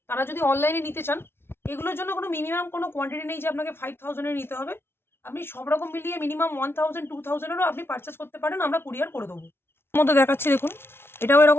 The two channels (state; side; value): late; right; 0.12 ms